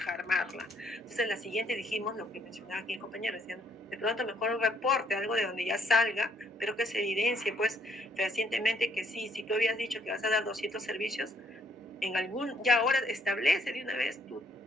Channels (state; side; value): normal; both; correlation 0.67